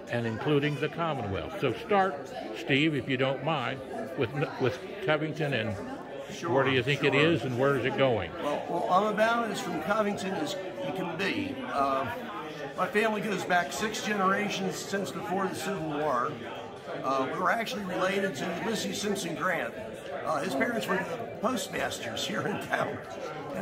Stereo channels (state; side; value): identical; both; correlation 1.00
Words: and including the Commonwealth. So start, Steve, if you don't mind, with Covington, and where do you think it is and where is it going? Well, I'm about as from Covington as you can be. My family goes back 6 generations since before the Civil War. We were actually related to Ulysses Simpson Grant. His parents were the postmasters here in town,